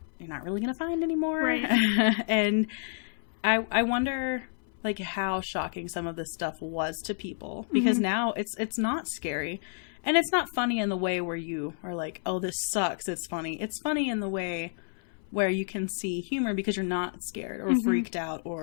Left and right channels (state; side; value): silent; right; 58 dB below the other